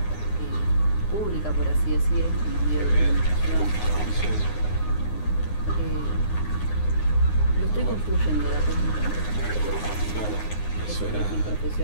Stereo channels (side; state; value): right; late; 9.6 ms